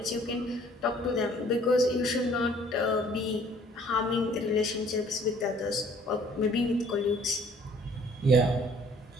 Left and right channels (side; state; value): both; normal; correlation 0.57